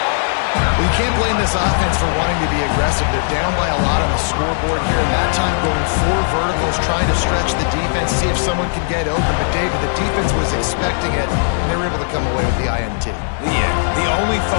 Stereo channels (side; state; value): right; silent; digital silence